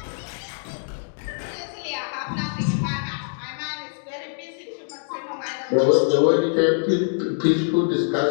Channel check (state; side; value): silent; right; digital silence